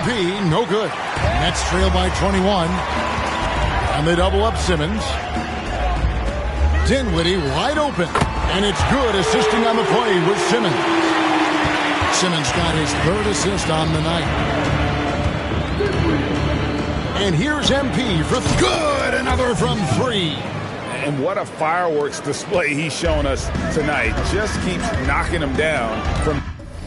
no good. Nets trail by 21. And they double up Simmons. Dinwiddie wide open. And it's good, assisting on the play with Simmons. Simmons got his third assist on the night. And here's MP for good. Another from three. And what a fireworks display he's shown us tonight. Just keeps knocking him down from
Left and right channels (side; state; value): both; identical; correlation 1.00